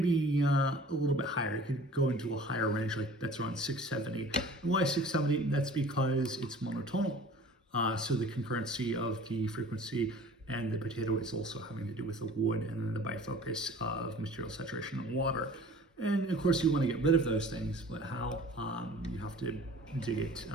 a little bit higher. It could go into a higher range, like that's around 670. And why 670? That's because it's monotonal. So the concurrency of the frequency and the potato is also having to do with the wood, and then the bifocus of material saturation and water. And of course, you want to get rid of those things, but how? You have to dig it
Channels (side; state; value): both; normal; correlation 0.46